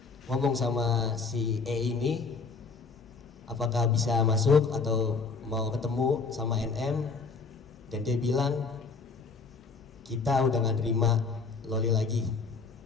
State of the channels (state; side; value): quieter; right; 4.5 dB